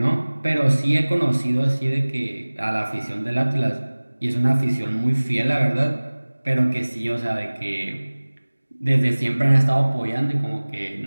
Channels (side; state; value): both; inverted; correlation -1.00